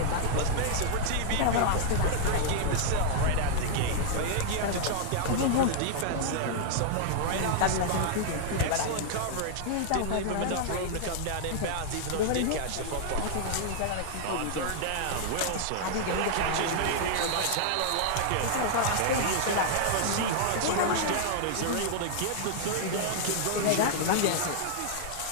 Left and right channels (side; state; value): both; different; correlation -0.01